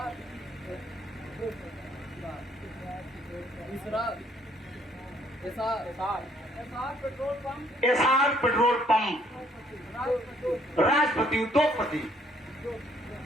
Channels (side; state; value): both; normal; correlation 0.65